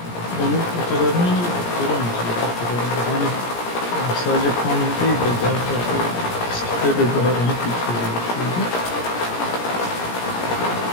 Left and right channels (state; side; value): late; right; 17 ms